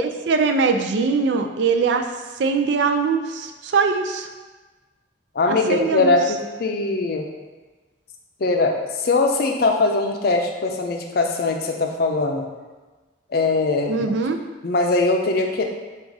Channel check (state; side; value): normal; both; correlation -0.03